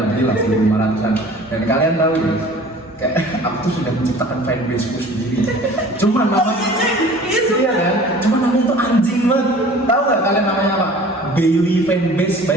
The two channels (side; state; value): both; normal; correlation 0.46